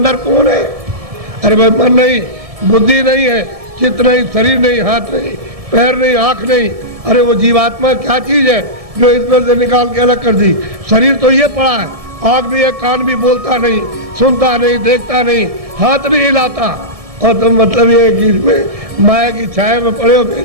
कौन है। अरे भाई मन नहीं, बुद्धि नहीं है, चित्त नहीं, शरीर नहीं, हाथ नहीं, पैर नहीं, आँख नहीं। अरे वो जीवात्मा क्या चीज़ है जो इसमें से निकाल के अलग कर दी? शरीर तो ये पड़ा है, आँख भी है, कान भी, बोलता नहीं, सुनता नहीं, देखता नहीं, हाथ भी हिलाता, और तुम मतलब ये कि इसमें माया की छाया में पड़े हो,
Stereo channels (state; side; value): late; left; 1.7 ms